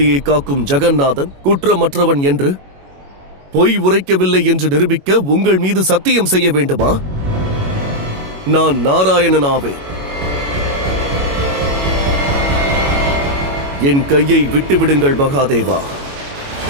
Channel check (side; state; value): left; late; 21 ms